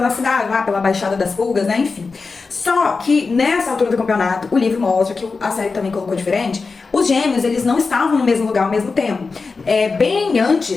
cidade, lá pela Baixada das Pulgas, né, enfim. Só que nessa altura do campeonato, o livro mostra, que a série também colocou diferente, os gêmeos, eles não estavam no mesmo lugar ao mesmo tempo. Bem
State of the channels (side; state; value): right; quieter; 4.4 dB